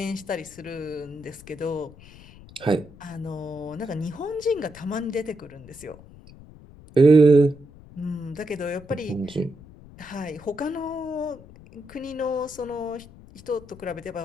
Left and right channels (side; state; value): left; noise; rumble, 20 dB below the sound